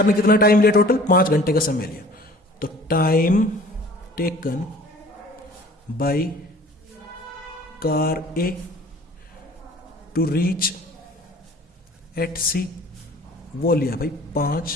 ने कितना टाइम लिया, टोटल 5 घंटे का समय लिया। तो time taken by car A to reach at C वो लिया भाई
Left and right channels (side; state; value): both; normal; correlation 0.48